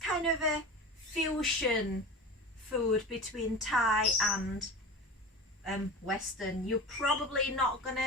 of a fusion food between Thai and Western. You're probably not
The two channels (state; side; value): normal; both; correlation 0.32